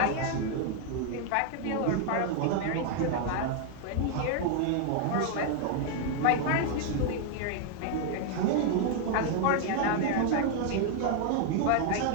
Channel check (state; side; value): different; both; correlation 0.00